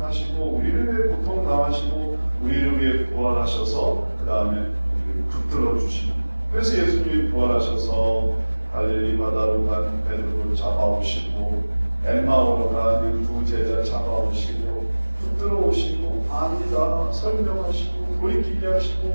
우리를 위해 고통 당하시고 우리를 위해 부활하셔서 그 다음에 우리를 붙들어 주십니다. 그래서 예수님이 부활하셔서 갈릴리 바다로 간 베드로를 잡아오시고 엠마오로 가는 두 제자 잡아오시고 붙들어 오시고 아니다 설명하시고 돌이키게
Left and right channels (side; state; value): both; inverted; correlation -1.00